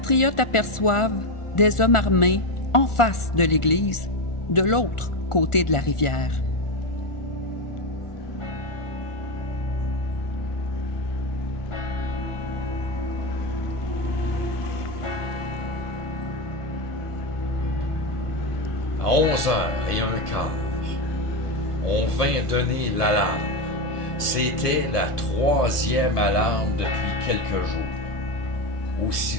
aperçoivent des hommes armés en face de l'église, de l'autre côté de la rivière. À 11h15, on vint donner l'alarme. C'était la 3e alarme depuis quelques jours.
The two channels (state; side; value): late; right; 1.4 ms